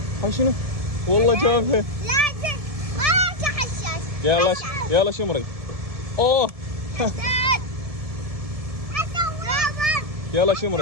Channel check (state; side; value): late; left; 1.7 ms